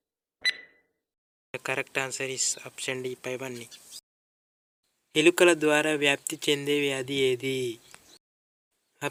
The correct answer is option D పైవన్నీ. ఎలుకల ద్వారా వ్యాప్తి చెందే వ్యాధి ఏది?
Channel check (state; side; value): identical; both; correlation 1.00